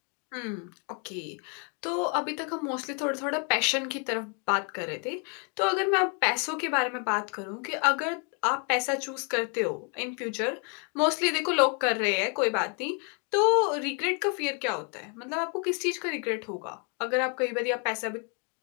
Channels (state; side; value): quieter; right; 37.8 dB